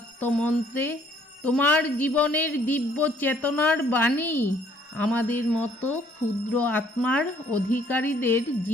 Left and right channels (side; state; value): both; normal; correlation 0.62